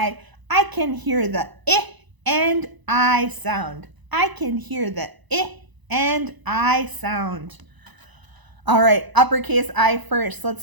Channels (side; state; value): left; late; 1.0 ms